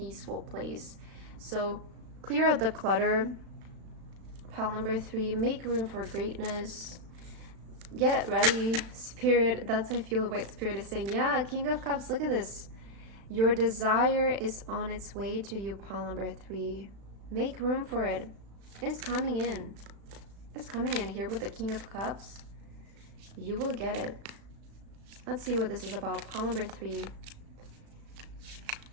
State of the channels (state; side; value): late; left; 35 ms